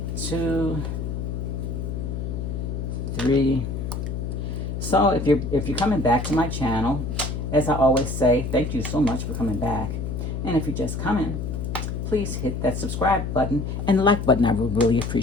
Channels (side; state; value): left; noise; hum, 4 dB below the sound